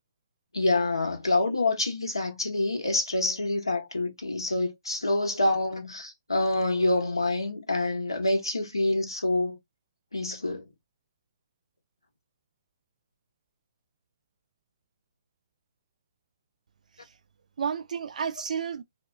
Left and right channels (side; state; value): both; inverted; correlation -0.77